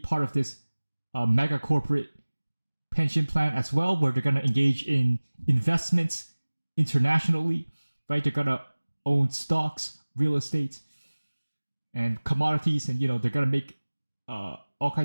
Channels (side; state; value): both; inverted; correlation -1.00